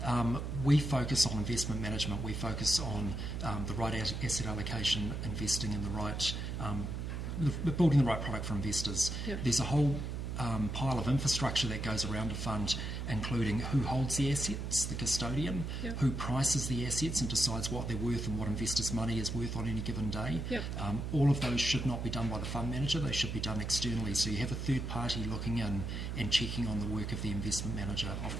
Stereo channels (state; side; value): noise; right; hum, 4 dB below the sound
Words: we focus on investment management. We focus on the right asset allocation, investing in the right, building the right product for investors. Yep. There's a whole pile of infrastructure that goes around a fund, including who holds the assets, the custodian, who prices the assets and decides what they're worth and what investors' money is worth on any given day. Yep. All of those should not be done by the fund manager, they should be done externally. So you have a third party looking in and checking on the work of the investment manager, of